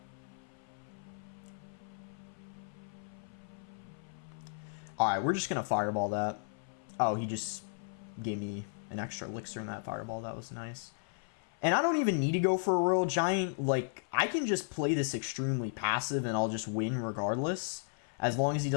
Alright, we're just going to Fireball that. Oh, he just gave me an extra Elixir in that Fireball. That was nice. And I don't even need to go for a Royal Giant. Like, I can just play this extremely passive and I'll just win regardless. As long as he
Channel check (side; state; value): right; silent; 55 dB below the other